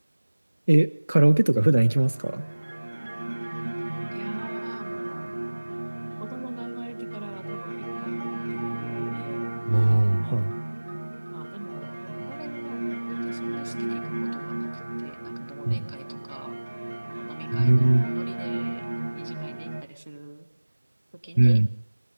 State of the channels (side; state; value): both; inverted; correlation -1.00